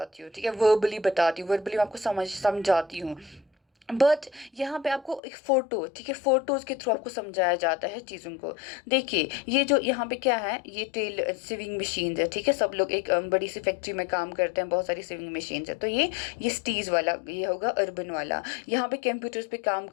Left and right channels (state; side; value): drops out; right; at 5.2 s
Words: हूँ, ठीक है, वर्बली बताती हूँ, वर्बली मैं आपको समझाती हूँ। बट यहाँ पे आपको एक फ़ोटो, ठीक है, फ़ोटोज़ के थ्रू आपको समझाया जाता है चीज़ों को। देखिए ये जो यहाँ पे क्या है, ये टेल सिविंग मशीन्स है, ठीक है। सब लोग एक बड़ी सी फैक्ट्री में काम करते हैं, बहुत सारी सिविंग मशीन्स है। तो ये स्टीज वाला ये होगा अर्बन वाला। यहाँ पे कंप्यूटर्स पे काम